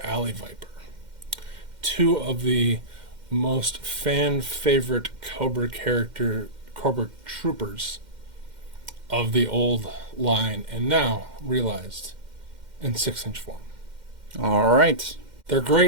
Alley Viper. Two of the most fan-favorite Cobra troopers of the old line, and now realized in 6-inch form. All right. They're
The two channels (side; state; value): left; late; 2.1 ms